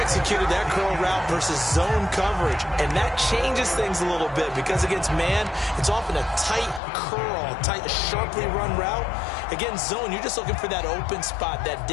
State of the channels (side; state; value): right; drops out; at 6.8 s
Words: executed that curl route versus zone coverage, and that changes things a little bit because against man, it's often a tight curl, tight, sharply run route. Against zone, you're just looking for that open spot, that